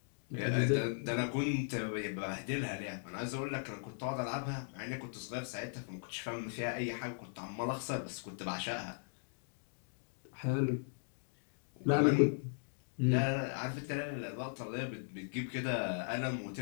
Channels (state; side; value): silent; right; digital silence